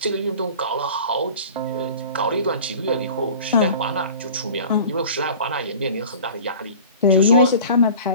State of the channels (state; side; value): inverted; both; correlation -0.41